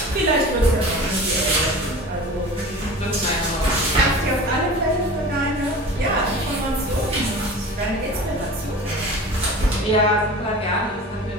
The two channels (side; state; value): both; normal; correlation 0.37